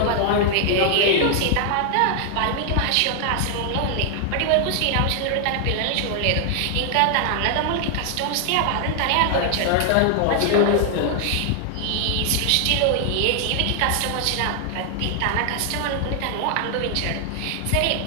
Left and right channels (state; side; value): different; both; correlation 0.00